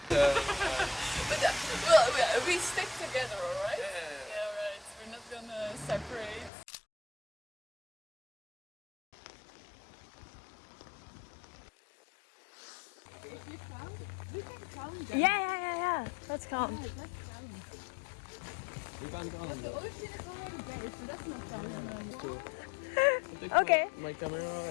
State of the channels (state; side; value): drops out; right; at 6.5 s